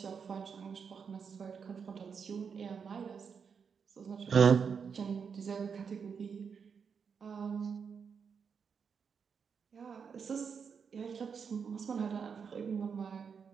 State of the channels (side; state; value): left; quieter; 6.3 dB